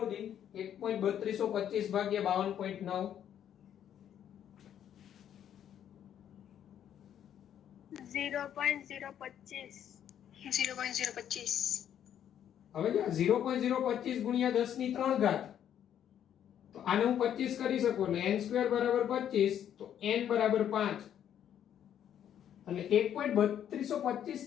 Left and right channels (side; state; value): right; quieter; 9.9 dB